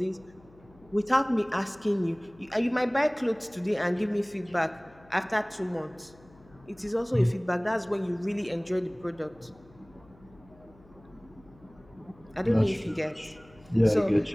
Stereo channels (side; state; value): left; noise; hum, 26 dB below the sound